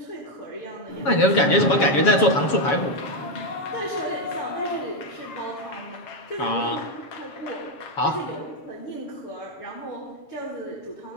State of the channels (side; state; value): right; late; 7.2 ms